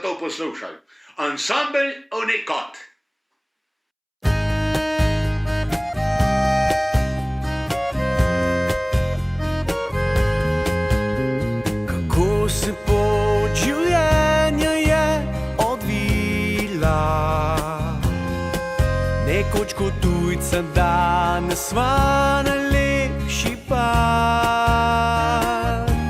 to poslušaj. Ansambel Unikat. Kako se pot življenja je odvila, nekoč kot tujca, danes sva najlepši par.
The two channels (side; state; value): both; identical; correlation 1.00